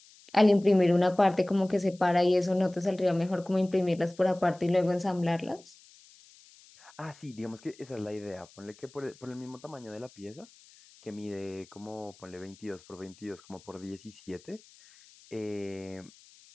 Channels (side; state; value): left; noise; hiss, 25 dB below the sound